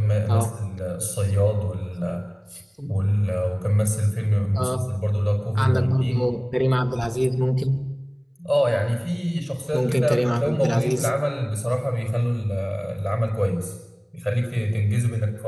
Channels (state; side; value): identical; both; correlation 1.00